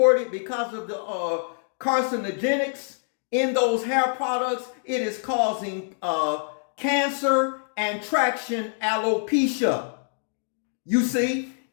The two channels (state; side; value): silent; right; 60 dB below the other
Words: because of the carcinogenics in those hair products. It is causing cancer and traction alopecia. You see,